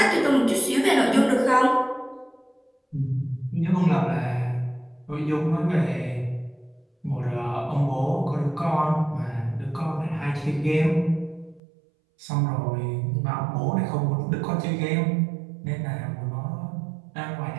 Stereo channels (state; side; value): drops out; left; at 11.6 s